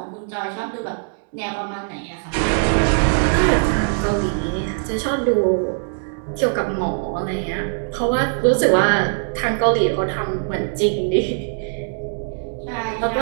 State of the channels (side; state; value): left; silent; digital silence